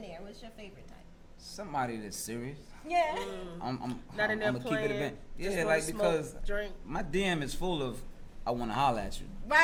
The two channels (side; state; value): both; identical; correlation 1.00